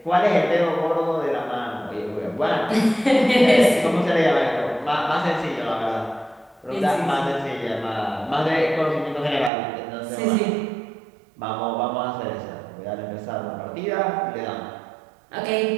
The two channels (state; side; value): drops out; left; at 9.5 s